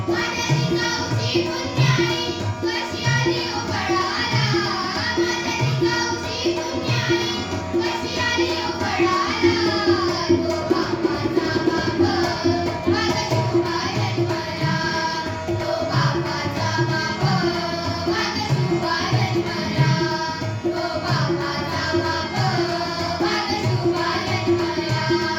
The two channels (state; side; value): identical; both; correlation 1.00